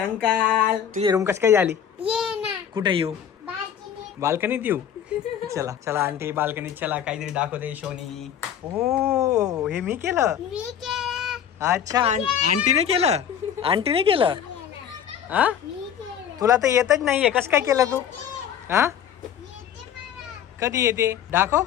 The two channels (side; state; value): right; quieter; 9.0 dB